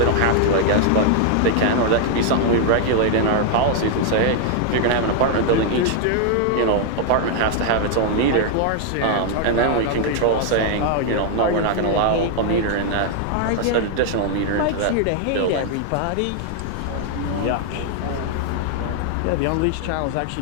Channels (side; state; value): both; different; correlation 0.00